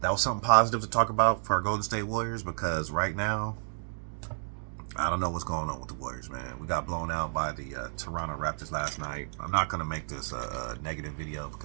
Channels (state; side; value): silent; left; digital silence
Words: that was something positive to talk about for our Golden State Warriors, because right now, I don't know what's going on with the Warriors, man. We got blown out by the Toronto Raptors last night. I'm not going to make this a negative video,